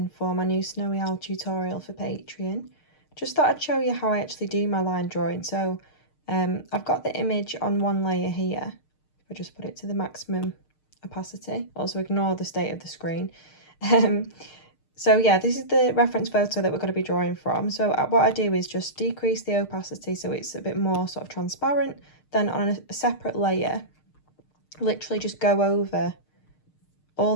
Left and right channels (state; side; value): late; right; 6.6 ms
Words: for my new Snowy Owl tutorial for Patreon. Just thought I'd show you how I actually do my line drawing. So I've got the image on one layer here. If I just put it to the maximum opacity, also ignore the state of the screen. So yeah, this is the reference photo that we're going to be drawing from. So what I do is just decrease the opacity so it's a bit more sort of transparent. Then on a separate layer, literally just go over